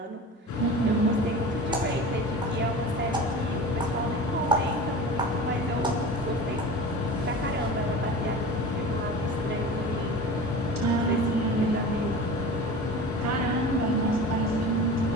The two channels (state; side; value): normal; both; correlation 0.34